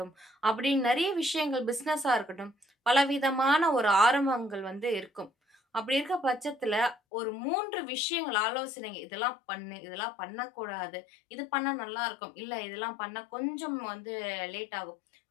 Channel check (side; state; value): right; drops out; at 7.0 s